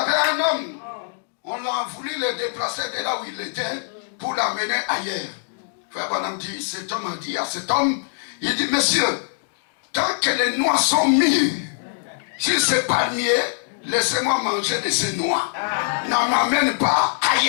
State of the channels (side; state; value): right; silent; digital silence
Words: un homme, on a voulu le déplacer de là où il était pour l'amener ailleurs. Frère Branham dit, cet homme a dit à cet homme, il dit, monsieur, tant que les noix sont mûres, si ce n'est pas mieux, laissez-moi manger de ces noix. N'en m'amène pas